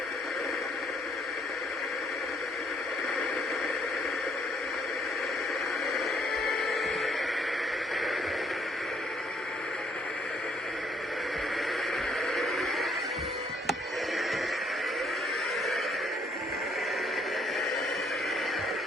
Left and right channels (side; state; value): both; normal; correlation 0.68